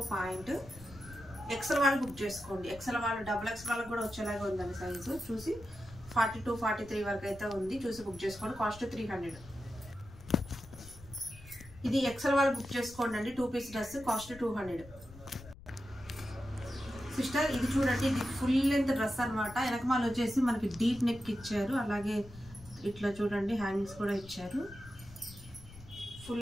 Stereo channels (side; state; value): left; noise; rumble, 18 dB below the sound